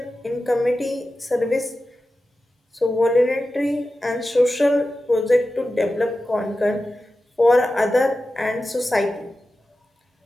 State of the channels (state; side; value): normal; both; correlation 0.93